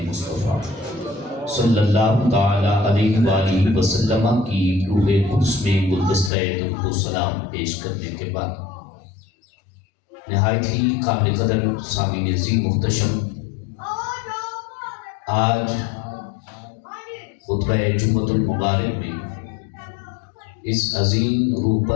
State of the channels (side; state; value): right; drops out; at 6.3 s